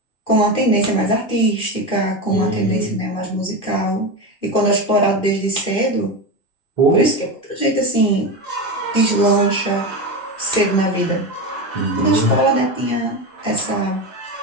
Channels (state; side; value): late; right; 2.6 ms